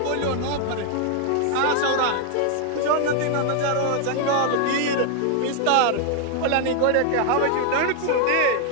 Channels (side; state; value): both; different; correlation 0.00